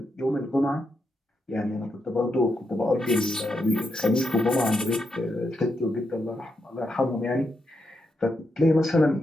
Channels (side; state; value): both; normal; correlation 0.83